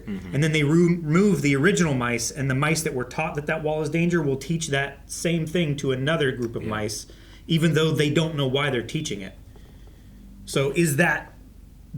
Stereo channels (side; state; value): both; identical; correlation 1.00